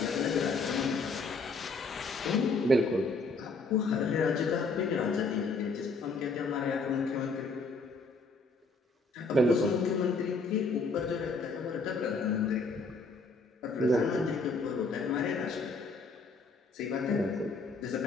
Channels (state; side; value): quieter; right; 3.7 dB